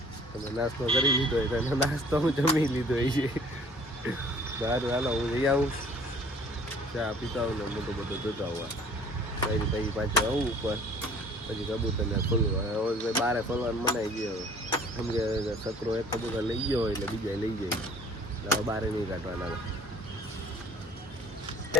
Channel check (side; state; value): both; normal; correlation 0.54